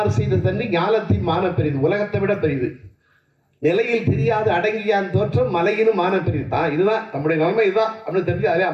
செய்த தண்ணி ஞானத்தின் மான பெரிது, உலகத்தை விட பெரிது. நிலையில் தெரியாது அடங்கியான் தோற்றம் மலையினும் மான பெரிது. தான் இதுதான் நம்முடைய நிலைமை, இதுதான் அப்படின்னு தெரிஞ்சு அதே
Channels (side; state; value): both; identical; correlation 1.00